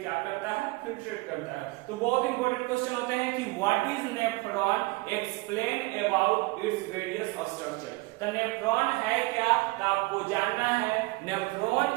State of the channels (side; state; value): left; quieter; 23.7 dB